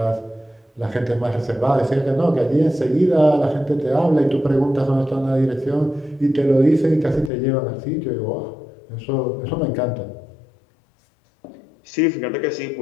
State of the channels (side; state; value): right; drops out; at 7.3 s